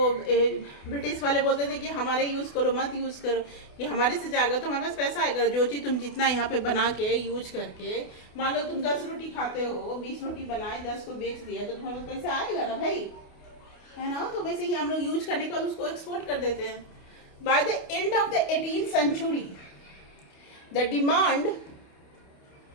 ब्रिटिश वाले बोलते थे कि हमारे यूज़ करो, मत यूज़ करो, कि हमारे से जाएगा तो हमारे पास पैसा आएगा। जो चीज़ तुम जितना यहाँ पे बना के यूज करके, मान लो तुम 10 रोटी खाते हो, 20 रोटी बनाए 10 को बेच दिया तो तुम्हारे पास पैसा आएगा ना भाई, है ना। तो वैसे ही हम लोग यूज करने का उसको एक्सपोर्ट कर देते हैं। By the end of the 18th century the demand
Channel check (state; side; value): late; right; 28 ms